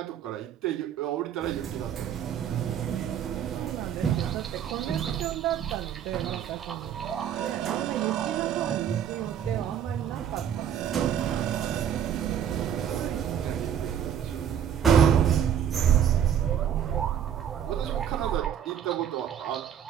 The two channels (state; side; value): quieter; left; 9.2 dB